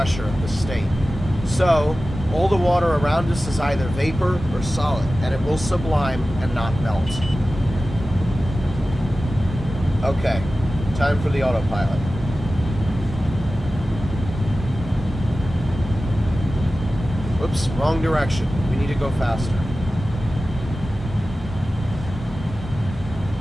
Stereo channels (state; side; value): normal; both; correlation 0.95